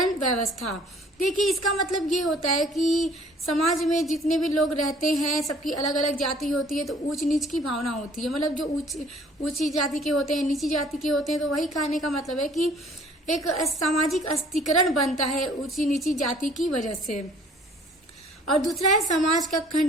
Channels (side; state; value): both; normal; correlation 0.55